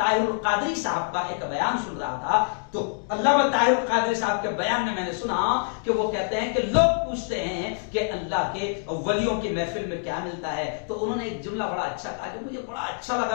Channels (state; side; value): silent; right; digital silence